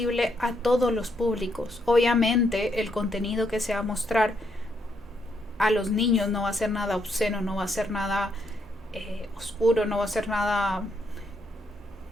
a todos los públicos. Obviamente el contenido que se va a mostrar a los niños no va a ser nada obsceno, no va a ser nada oscuro, no va a ser nada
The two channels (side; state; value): both; normal; correlation 0.76